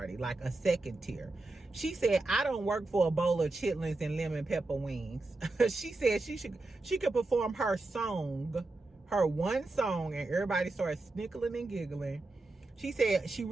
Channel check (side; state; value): left; quieter; 3.1 dB